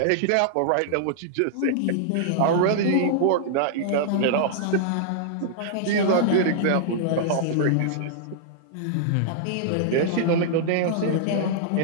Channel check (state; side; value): different; both; correlation -0.01